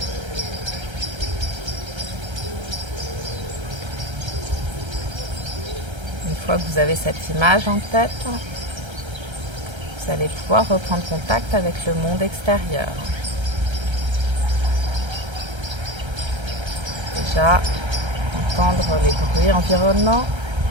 Une fois que vous avez cette image en tête, vous allez pouvoir reprendre contact avec le monde extérieur. Déjà, entendre les bruits environnants,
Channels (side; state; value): left; late; 1.3 ms